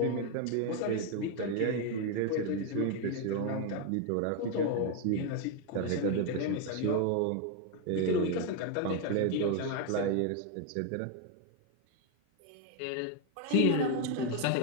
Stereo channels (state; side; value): different; both; correlation 0.01